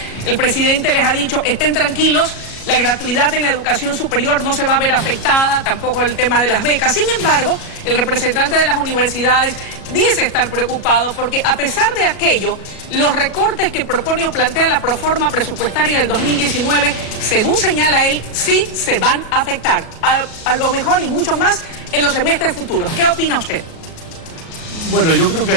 el presidente les ha dicho, estén tranquilos, la gratuidad en la educación superior no se va a ver afectada, tampoco el tema de las becas. Sin embargo, el representante de las universidades dice estar preocupado porque a pesar de aquello, los recortes que propone o plantea la proforma presupuestaria del 2019, según señala él, sí se van a afectar, a lo mejor y mucho más en los semestres futuros. ¿Qué opina usted? Bueno, yo creo que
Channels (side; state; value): right; late; 37 ms